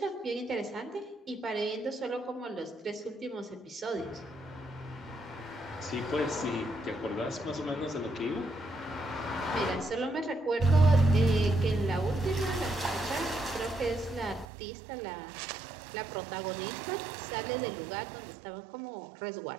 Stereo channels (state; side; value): drops out; left; at 14.5 s